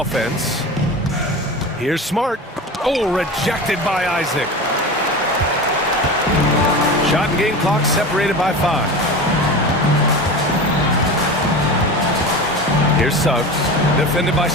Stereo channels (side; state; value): both; normal; correlation 0.30